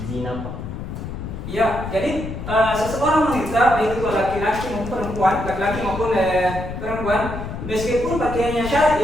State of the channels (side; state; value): left; noise; rumble, 7 dB below the sound